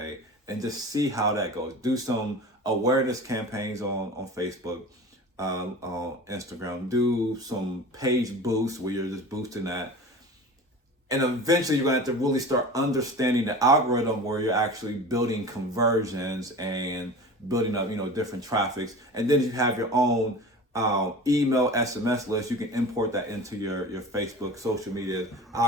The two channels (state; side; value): normal; both; correlation 0.35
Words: and just see how that goes. Do some awareness campaigns on Facebook, on Instagram. Do some page boosts where you're just boosting that. And eventually you're going to have to really start understanding the algorithm where you're actually building conversions and building up, different traffics. And then you have your own email, SMS list. You can import that into your Facebook social media